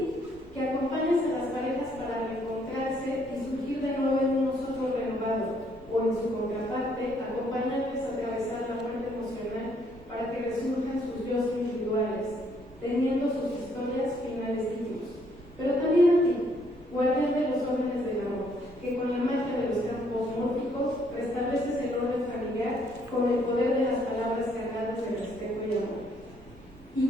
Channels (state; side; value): normal; both; correlation 0.68